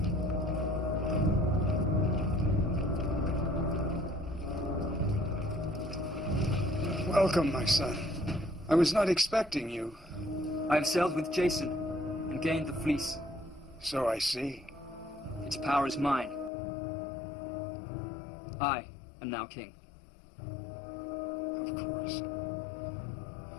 Welcome, my son. I was not expecting you. I have sailed with Jason and gained the fleece. So I see. Its power is mine. I am now king. Of course.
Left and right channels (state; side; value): drops out; right; at 16.5 s